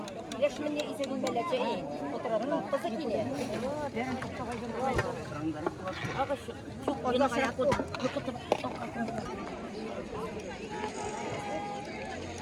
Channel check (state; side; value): identical; both; correlation 1.00